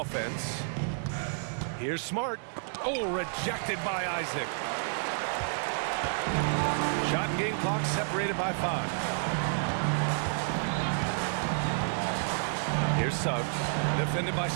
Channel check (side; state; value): left; silent; digital silence